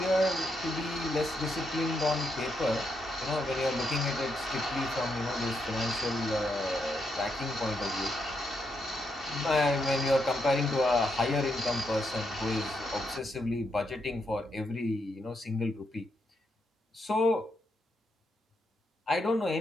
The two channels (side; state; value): both; normal; correlation 0.80